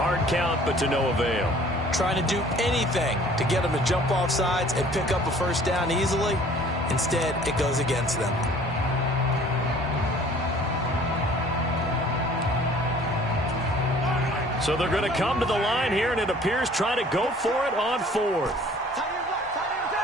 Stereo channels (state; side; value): normal; both; correlation 0.52